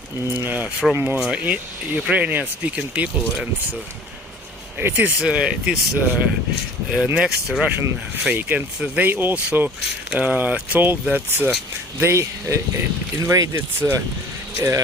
from Ukrainian-speaking people, and it is next Russian fake. And they also told that they invaded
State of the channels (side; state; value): both; normal; correlation 0.47